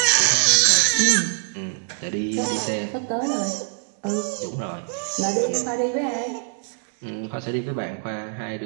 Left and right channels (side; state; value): left; silent; digital silence